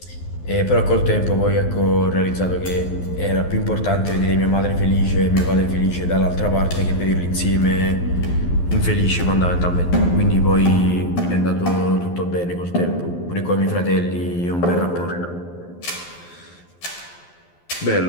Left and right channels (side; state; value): right; late; 12 ms